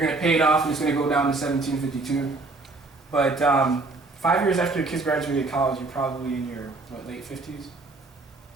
to pay it off and it's going to go down to $1,752. But 5 years after the kids graduated college, you're probably in your, late 50s?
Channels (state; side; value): quieter; left; 3.4 dB